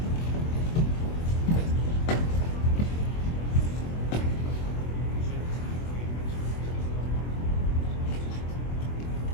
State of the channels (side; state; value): right; late; 24 ms